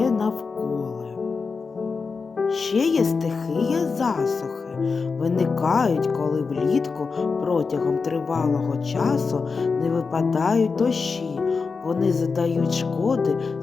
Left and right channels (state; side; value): quieter; right; 4.8 dB